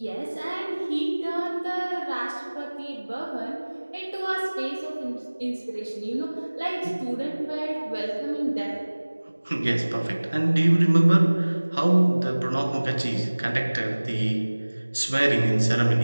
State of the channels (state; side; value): inverted; both; correlation -1.00